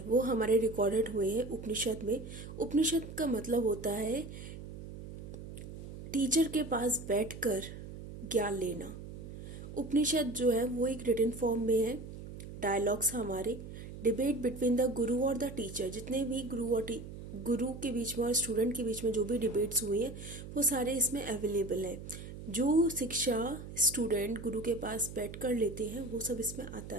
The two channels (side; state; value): right; noise; hum, 11 dB below the sound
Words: वो हमारे रिकॉर्डेड हुए हैं उपनिषद में. उपनिषद का मतलब होता है टीचर के पास बैठकर ज्ञान लेना. उपनिषद जो है वो एक रिटन फॉर्म में है. डायलॉग्स हमारे, डिबेट बिटवीन द गुरु और द टीचर, जितने भी गुरु के बीच में और स्टूडेंट के बीच में जो भी डिबेट्स हुई हैं वो सारे इसमें अवेलेबल हैं. जो शिक्षा स्टूडेंट गुरु के पास बैठ कर लेते हैं वो सब इसमें आता